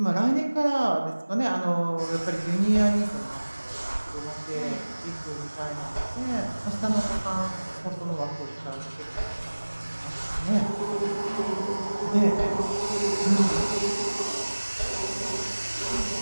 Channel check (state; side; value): inverted; both; correlation -1.00